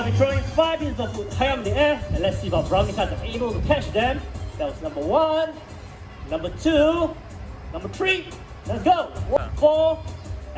be throwing 5 pieces of food high up in the air, and let's see if our Brahminy Kites are able to catch them. That was number 1, number 2, number 3. Let's go. 4,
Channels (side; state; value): both; identical; correlation 1.00